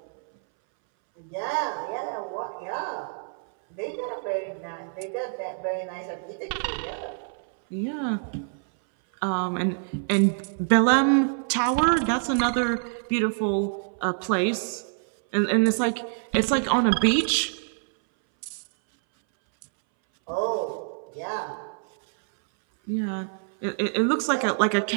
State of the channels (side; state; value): left; silent; 61 dB below the other